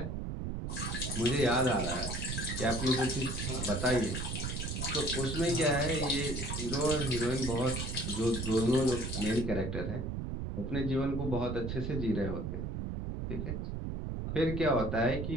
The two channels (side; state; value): right; noise; rumble, 3 dB below the sound